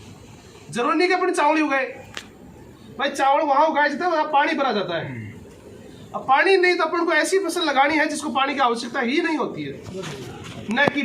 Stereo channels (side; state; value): both; identical; correlation 1.00